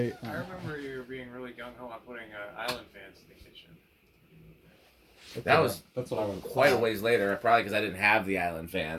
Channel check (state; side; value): identical; both; correlation 1.00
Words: I remember you being really gung-ho on putting island fans in the kitchen. That was that's what I would quite a ways later, probably because I didn't have the island